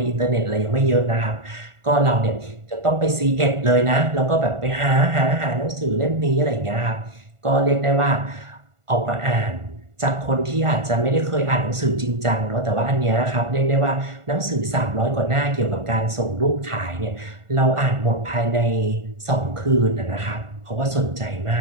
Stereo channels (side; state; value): left; late; 1.5 ms